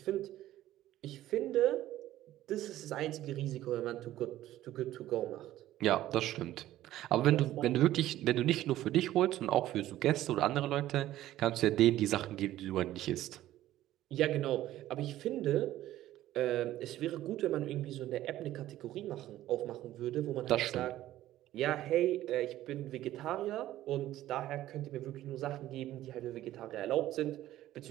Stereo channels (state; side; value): quieter; left; 14.1 dB